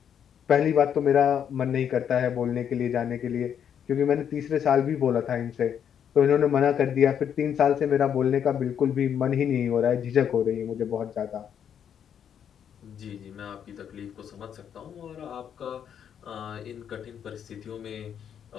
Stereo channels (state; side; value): quieter; right; 8.6 dB